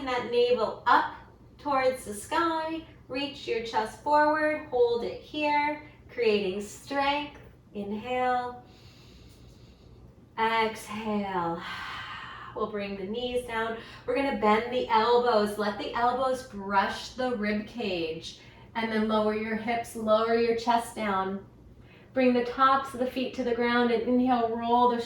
that navel up towards the sky. Reach your chest forward, hold it here, creating strength. Inhale, exhale. We'll bring the knees down. We're gonna bend the elbows. Let the elbows brush the rib cage, and then lower your hips, lower your chest down. Bring the tops of the feet to the ground and inhale, roll the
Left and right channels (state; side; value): identical; both; correlation 1.00